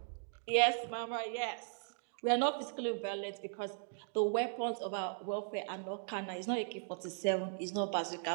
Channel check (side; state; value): left; silent; digital silence